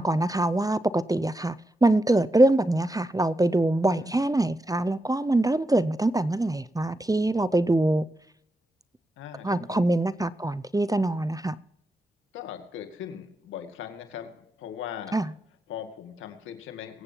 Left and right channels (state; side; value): normal; both; correlation 0.86